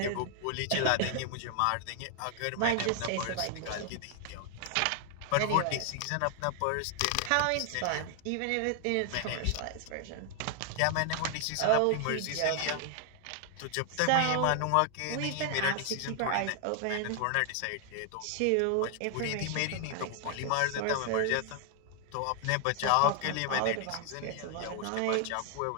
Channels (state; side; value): different; both; correlation 0.00